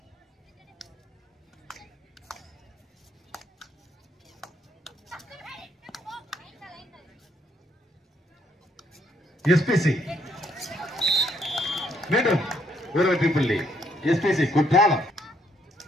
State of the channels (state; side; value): normal; both; correlation 0.70